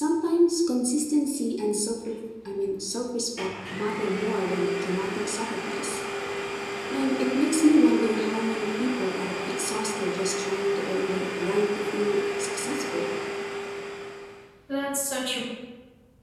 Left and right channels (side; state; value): both; identical; correlation 1.00